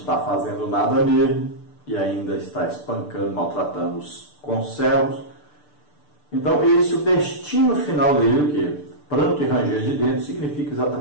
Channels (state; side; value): late; right; 6.8 ms